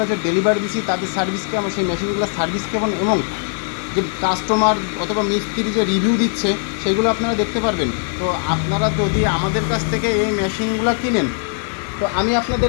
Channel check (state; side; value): silent; right; 56 dB below the other